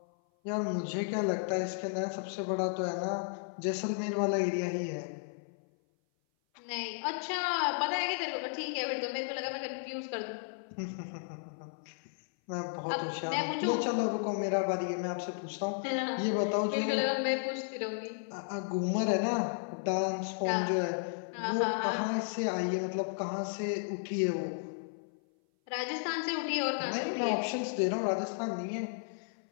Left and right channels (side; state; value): right; silent; 55 dB below the other